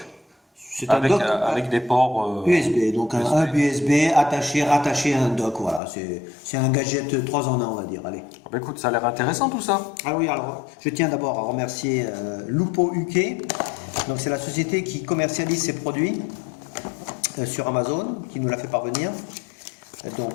C'est un avec, dock avec des ports USB, donc un USB. hub USB rattaché à un dock. Voilà, c'est un gadget 3 en 1, on va dire. Allez. Bah, écoute, ça a l'air intéressant tout ça. Ah oui, alors je tiens d'abord à remercier Lupo UK. Donc c'est la société qui commercialise ces produits sur Amazon, qui nous l'a fait parvenir.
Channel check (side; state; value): right; drops out; at 5.8 s